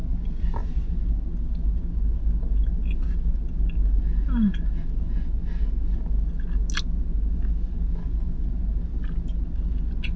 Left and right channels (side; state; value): both; identical; correlation 1.00